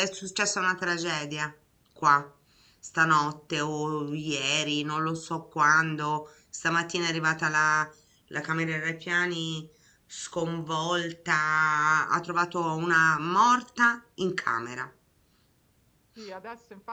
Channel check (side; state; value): both; identical; correlation 1.00